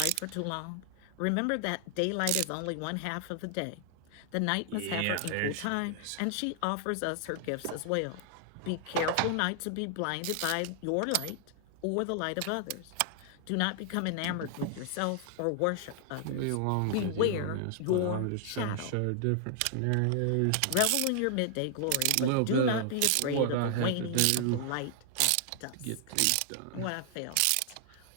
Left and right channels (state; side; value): different; both; correlation 0.00